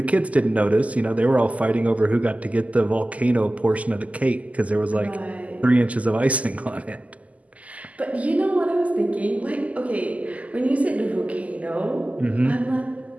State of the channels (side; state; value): left; late; 0.072 ms